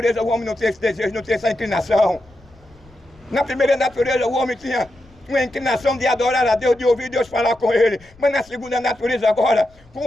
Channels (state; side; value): noise; left; rumble, 28 dB below the sound